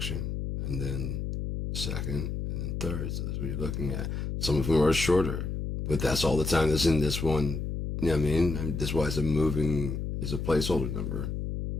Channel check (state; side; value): noise; left; hum, 3 dB below the sound